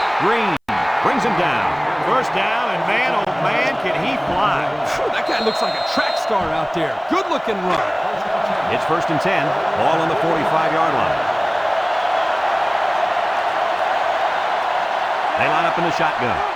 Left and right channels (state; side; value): identical; both; correlation 1.00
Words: Green brings him down. First down, and man, oh man, can he fly. That guy looks like a track star out there. Good-looking run. It's 1st and 10. Ball on the 45-yard line. They line up in the shotgun.